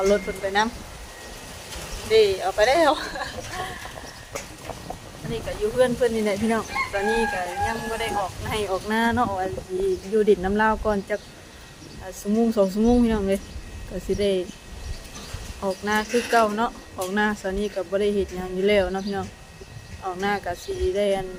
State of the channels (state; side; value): identical; both; correlation 1.00